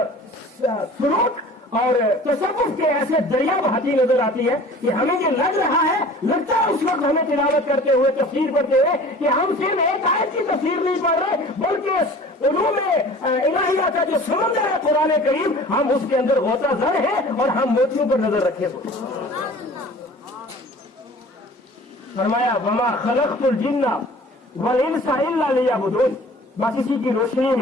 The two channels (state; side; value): normal; both; correlation 0.45